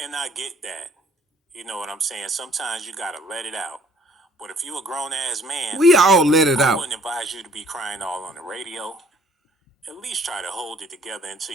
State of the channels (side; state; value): both; normal; correlation 0.59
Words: I get that. You know what I'm saying? Sometimes you gotta let it out. But if you a grown ass man, We all let it I out. wouldn't advise you to be crying all on the radio. At least try to hold it together